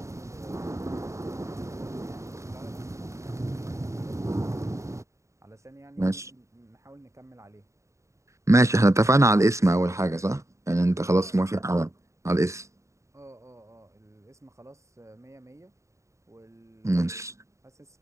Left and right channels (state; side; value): late; left; 0.14 ms